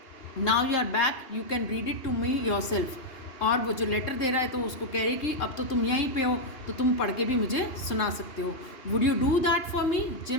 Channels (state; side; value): late; right; 2.8 ms